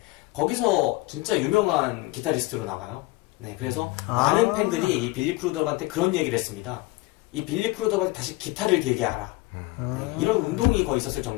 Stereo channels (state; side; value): quieter; right; 21.2 dB